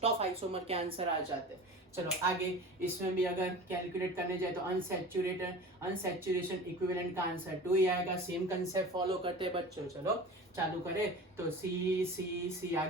of isomer के answer आ जाते हैं। चलो आगे इसमें भी अगर कैलकुलेट करने जाए तो अनसैचुरेशन इक्विवेलेंट का आंसर 2 ही आएगा। सेम कंसेप्ट फॉलो करते हैं बच्चों। चलो चालू करें। तो C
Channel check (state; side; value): normal; both; correlation 0.36